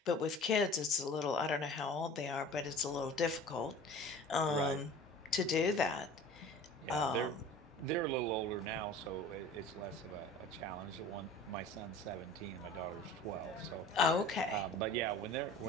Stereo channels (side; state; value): both; normal; correlation 0.42